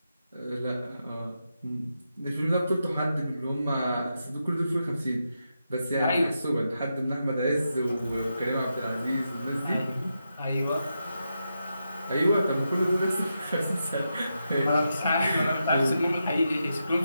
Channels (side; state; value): both; inverted; correlation -0.86